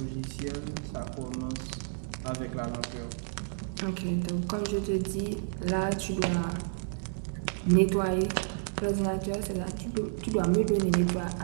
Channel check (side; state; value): left; silent; digital silence